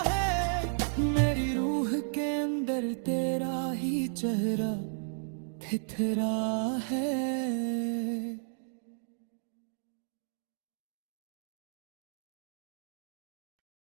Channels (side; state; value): left; silent; digital silence